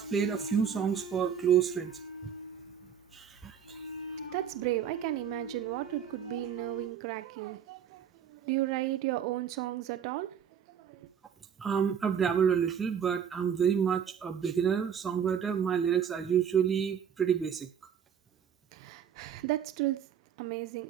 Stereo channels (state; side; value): quieter; left; 8.2 dB